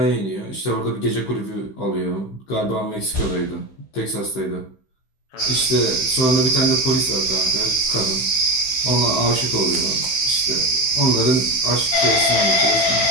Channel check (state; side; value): late; right; 16 ms